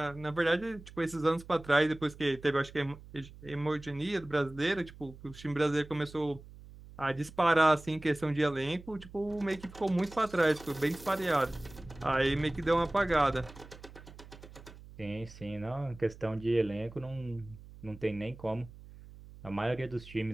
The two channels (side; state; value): right; noise; hum, 18 dB below the sound